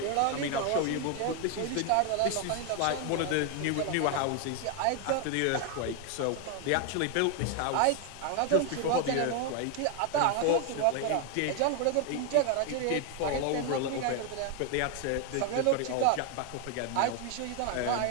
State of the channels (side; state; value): both; different; correlation 0.01